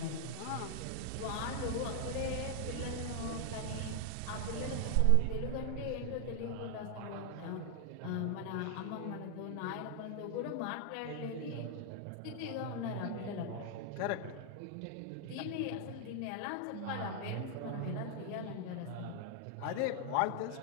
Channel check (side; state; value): both; different; correlation 0.00